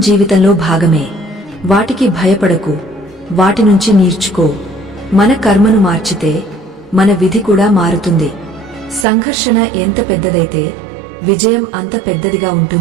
భాగమే. వాటికి భయపడకు, వాటి నుంచి నేర్చుకో. మన కర్మను మార్చితే మన విధి కూడా మారుతుంది. సంఘర్షణ ఎంత పెద్దదైతే విజయం అంత పెద్దదిగా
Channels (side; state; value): left; drops out; at 9.1 s